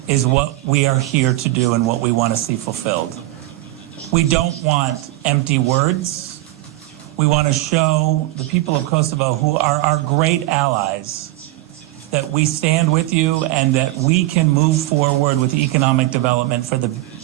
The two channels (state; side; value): quieter; left; 17.7 dB